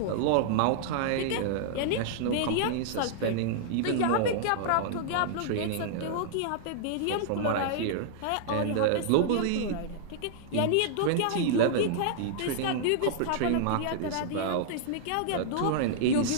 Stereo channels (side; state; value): both; different; correlation -0.01